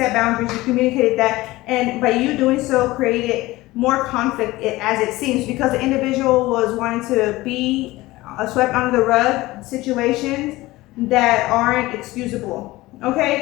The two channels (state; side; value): quieter; right; 18.9 dB